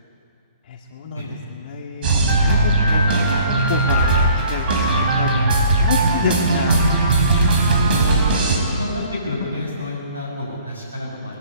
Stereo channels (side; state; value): both; inverted; correlation -0.54